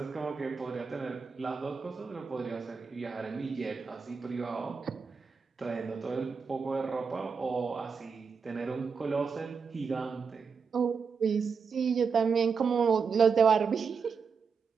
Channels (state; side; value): quieter; left; 5.6 dB